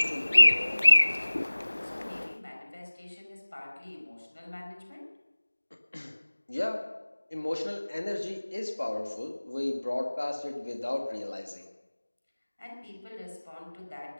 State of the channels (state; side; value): inverted; both; correlation -1.00